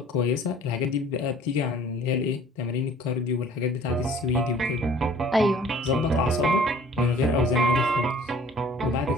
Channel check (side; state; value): both; normal; correlation 0.52